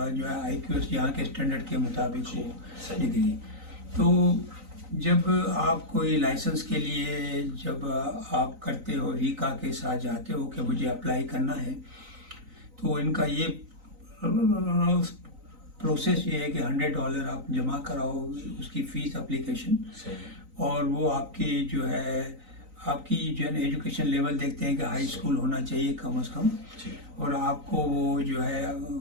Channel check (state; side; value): late; left; 3.9 ms